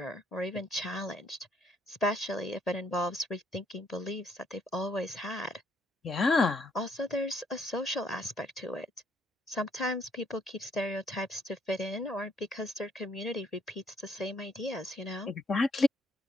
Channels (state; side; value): normal; both; correlation 0.68